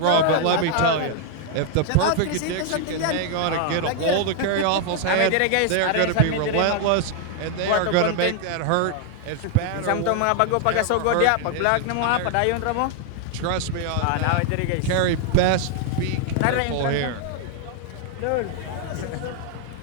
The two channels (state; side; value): different; both; correlation 0.00